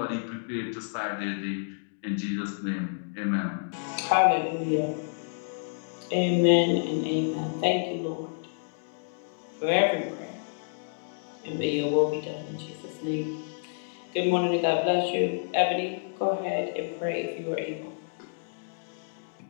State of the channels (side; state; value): right; silent; digital silence